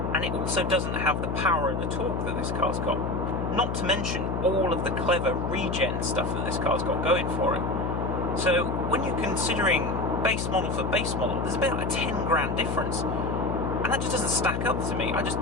And it also doesn't have the power and the torque that this car's got. Not to mention all of the clever regen stuff that this car's got going for it. So when you're considering base model for base model, there's about a 10 grand difference. And that just doesn't stack up to me. I just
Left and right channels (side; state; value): left; noise; hum, 1 dB below the sound